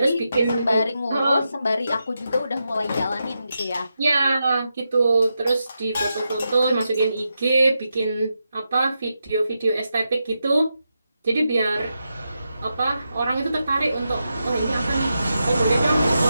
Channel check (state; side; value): inverted; both; correlation -0.87